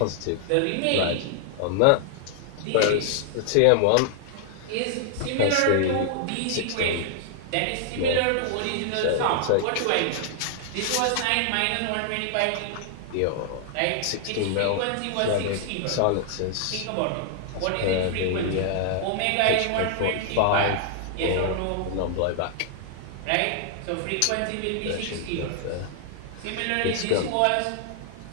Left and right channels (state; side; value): different; both; correlation 0.00